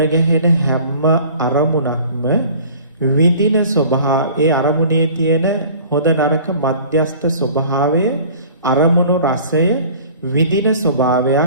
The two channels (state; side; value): inverted; both; correlation -0.46